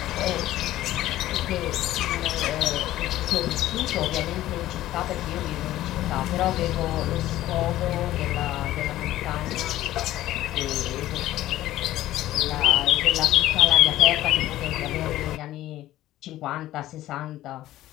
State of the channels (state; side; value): quieter; right; 14.6 dB